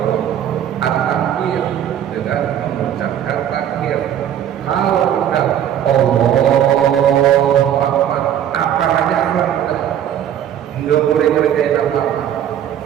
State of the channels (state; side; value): quieter; left; 10.2 dB